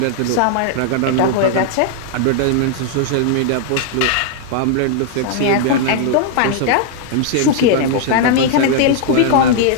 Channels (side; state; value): both; different; correlation 0.00